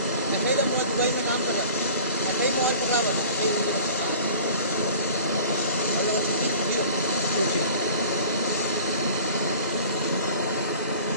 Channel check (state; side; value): inverted; both; correlation -0.43